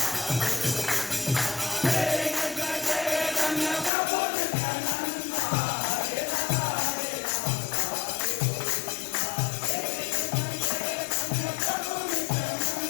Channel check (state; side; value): drops out; right; at 3.9 s